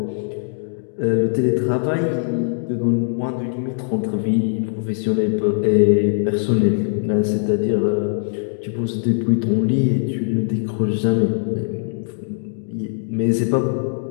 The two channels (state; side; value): silent; right; digital silence